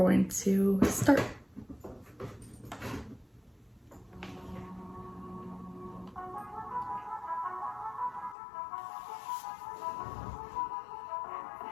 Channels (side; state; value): right; drops out; at 8.3 s